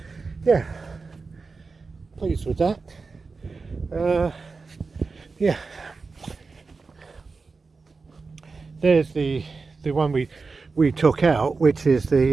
Yeah, pleased with that. Yeah, there's the one we took out, which is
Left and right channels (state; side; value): quieter; left; 4.3 dB